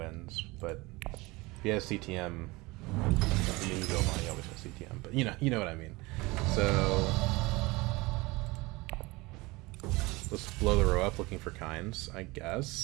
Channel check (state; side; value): quieter; left; 22.9 dB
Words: But if he has CTM, he always has CTM. But you know what I mean. So let's blow the row up looking for kinds, I